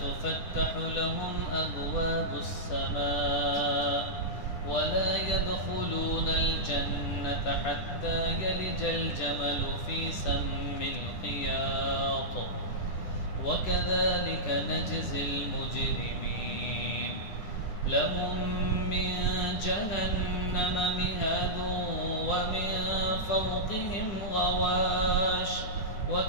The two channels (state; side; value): late; right; 10 ms